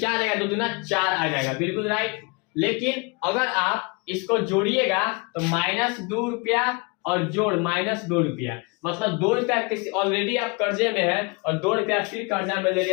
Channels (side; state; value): right; quieter; 30.1 dB